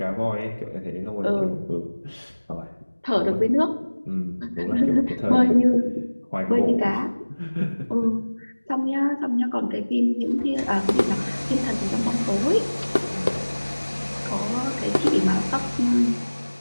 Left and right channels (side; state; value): both; inverted; correlation -1.00